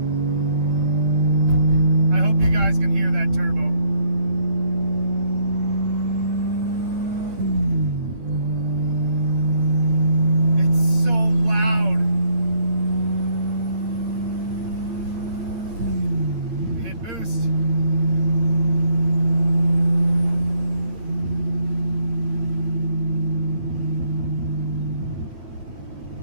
I hope you guys can hear that turbo. It's so loud. Hit boost.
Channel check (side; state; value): left; late; 9.2 ms